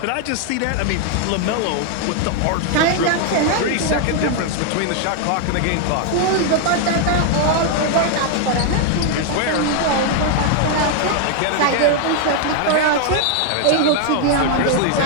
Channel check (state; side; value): different; both; correlation 0.00